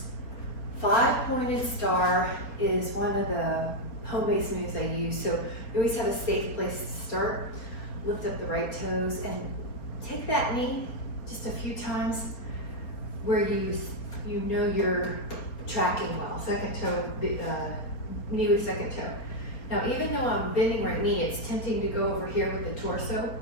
5-pointed star is one of the home-based moves I use. So you always have a safe place to start. Lift up the right toes and take that knee just a few times where you know you're tracking well. Second toe, knee with second toe. Now, even though I'm bending right knee, it's tempting to go over here with the torso.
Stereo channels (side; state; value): right; late; 4.3 ms